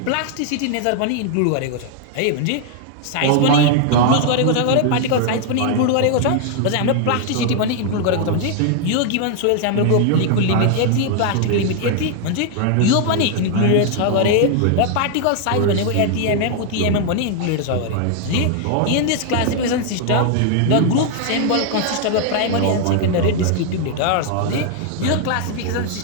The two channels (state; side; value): different; both; correlation 0.00